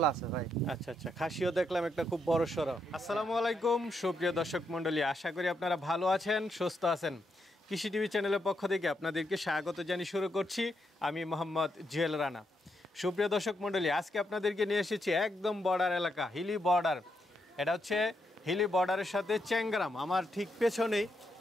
আছে ভাই। আচ্ছা আচ্ছা, খাসিও দেখলাম একটা খুব বড় সড়ো। আসসালামু আলাইকুম সুপ্রিয় দর্শক মণ্ডলী, আশা করি আপনারা ভালো আছেন, সুস্থ আছেন। কৃষি টিভি চ্যানেলের পক্ষ থেকে আপনাদেরকে স্বাগত জানিয়ে শুরু করছি আমি মোহাম্মদ জুয়েল রানা। সুপ্রিয় দর্শক মণ্ডলী, আজকে আপনাদেরকে নিয়ে এসেছি একদম বর্ডার এলাকা, হিলি বর্ডার। এটা হচ্ছে হিলি বর্ডারের সাথে চ্যাংগ্রাম, আমার ঠিক পেছনেই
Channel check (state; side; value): normal; both; correlation 0.80